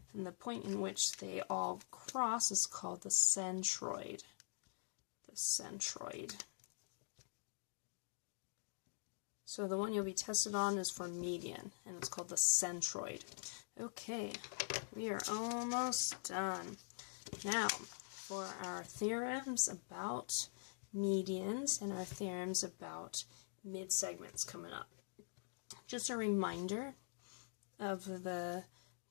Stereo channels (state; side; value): silent; right; digital silence